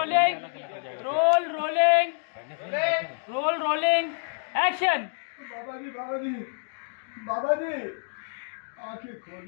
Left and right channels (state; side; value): silent; right; 60 dB below the other